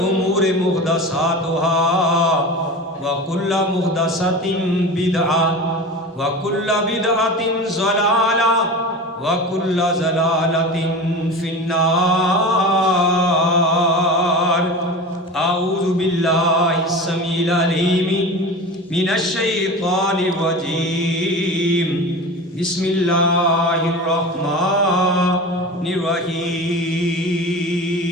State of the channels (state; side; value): normal; both; correlation 0.31